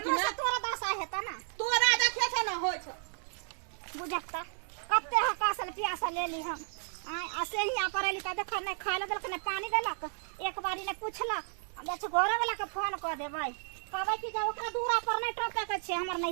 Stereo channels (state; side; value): silent; left; 56 dB below the other